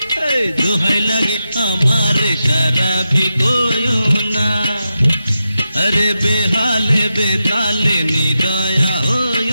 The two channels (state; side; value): inverted; both; correlation -0.89